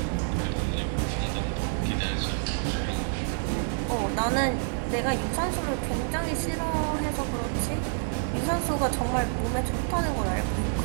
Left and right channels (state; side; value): silent; left; digital silence